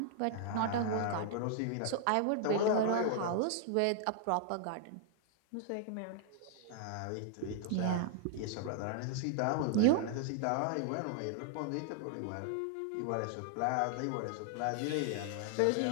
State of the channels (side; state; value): both; different; correlation 0.00